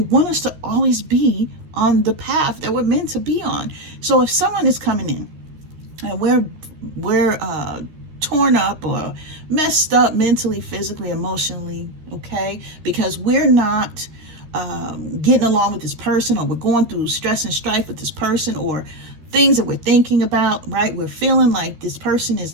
want us to always be on the path that we're meant to be on. So if someone is coming in and we're torn up or messed up mentally, physically, emotionally, okay, because we're not getting along with this person, or we're going through stress and strife with this person, or things that we're thinking about, right? We're feeling like this person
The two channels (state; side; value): late; left; 13 ms